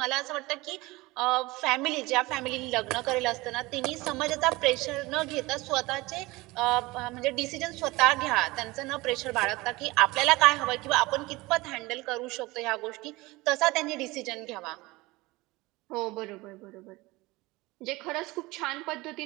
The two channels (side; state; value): left; quieter; 21.5 dB